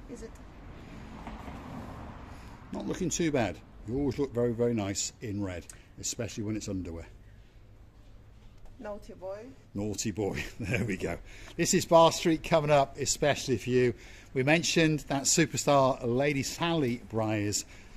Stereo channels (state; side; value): identical; both; correlation 1.00